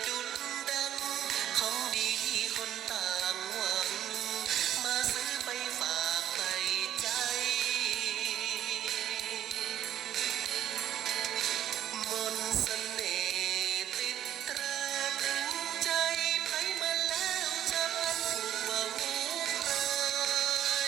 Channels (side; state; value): left; quieter; 11.2 dB